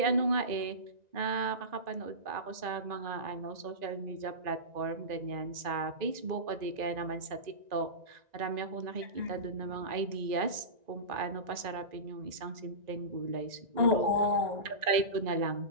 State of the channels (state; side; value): late; left; 1.9 ms